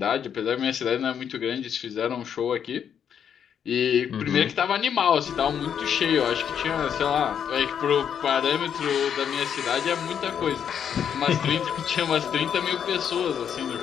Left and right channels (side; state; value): right; quieter; 8.3 dB